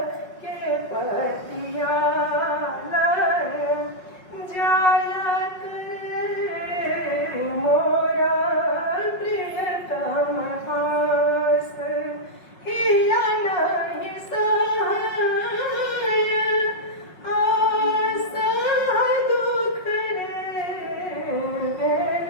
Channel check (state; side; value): late; right; 5.5 ms